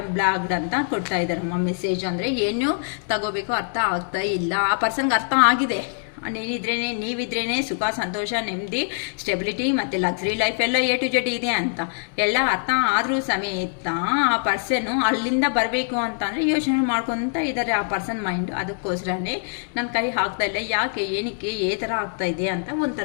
ಬ್ಲಾಕ್ಡ್ ಅಂತ ಕೊಡ್ತಾ ಇದ್ದಾರೆ ಮೆಸೇಜ್. ಅಂದರೆ ಏನು ತಗೋಬೇಕು ಅರ್ಥ ಆಗ್ತಾ ಇಲ್ಲ. ಆ ಪರ್ಸನ್ಗೆ ಅರ್ಥ ಆಗಿದೆ, ನೀವಿದ್ರೇನೆ ಸುಖ, ಸಂತೋಷ, ನೆಮ್ಮದಿ, ಸ್ಟೆಬಿಲಿಟಿ ಮತ್ತು ಲಕ್ಸರಿ ಲೈಫ್ ಎಲ್ಲ A to Z ಇದೆ ಅಂತ ಎಲ್ಲ ಅರ್ಥ ಆದರೂ ಸಮೇತ ಆ ಪರ್ಸನ್ನು ಅಲ್ಲಿಂದ ಬರಬೇಕು ಅಂತಂದರೆ ಯೋಚನೆ ಮಾಡ್ಕೊತ ಇದ್ದಾರೆ ಆ ಪರ್ಸನ್ ಮೈಂಡ್. ಅದಕ್ಕೋಸ್ಕರನೇ ನನ್ನ ಕೈ ಹಾಕ್ತಾ ಇಲ್ಲ. ಯಾಕೆ, ಏನಕ್ಕೆ, ಏ ಥರ ಆಗ್ತಾ ಇದೆ ಅಂತ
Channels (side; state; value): right; silent; 63 dB below the other